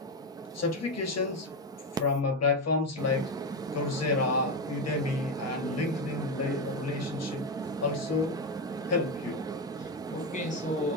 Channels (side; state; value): both; normal; correlation 0.13